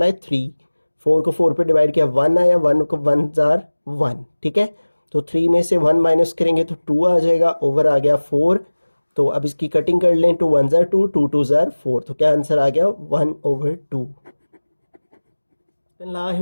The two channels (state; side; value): inverted; both; correlation -1.00